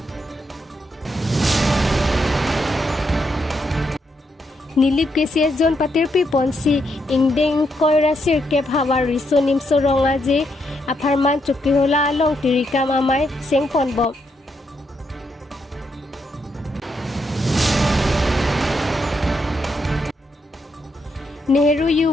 Nilip KCS zone patirpi ponsi ingdeng koira sirkep hawa riso nimso ronga je aparman chukihola along tirikam amai sengpon bom. Nehru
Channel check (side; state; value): both; normal; correlation 0.79